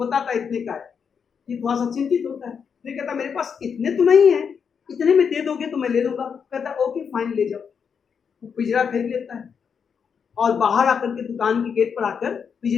है इतने का है। ये थोड़ा सा चिंतित होता है, फिर कहता मेरे पास इतने तो नहीं है, इतने में दे दोगे तो मैं ले लूंगा। कहता ओके फाइन, ले जाओ। वो पिंजरा फेंक लेता है और बाहर आकर के दुकान के गेट पर आकर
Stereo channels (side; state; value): right; quieter; 6.6 dB